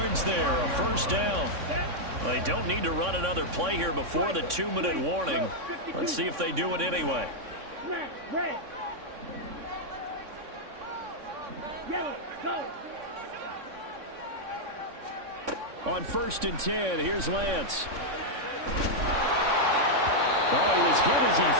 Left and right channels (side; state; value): left; late; 3.6 ms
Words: there, a 1st down. Well, they don't need to run another play here before the 2-minute warning. Let's see if they do it anyway. Red. Yellow, go. On 1st and 10, here's Lance. Oh, he was hit as he